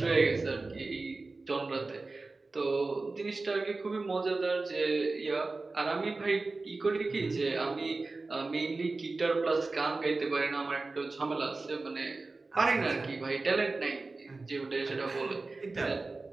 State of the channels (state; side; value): quieter; left; 3.5 dB